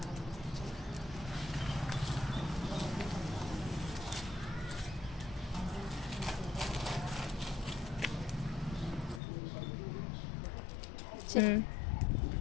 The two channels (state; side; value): drops out; right; at 9.2 s